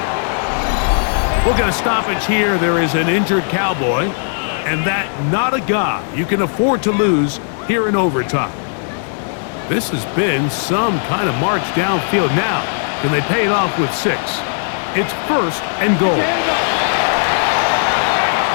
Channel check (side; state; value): right; silent; digital silence